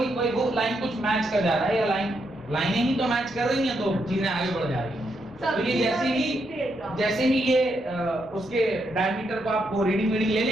वो लाइन कुछ मैच कर जा रहा है या लाइनें ही तो मैच कर रही हैं तो चीजें आगे बढ़ जा रही हैं। तो ये जैसे ही ये उसके डायमीटर को आप वो रीडिंग ले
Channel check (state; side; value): normal; both; correlation 0.79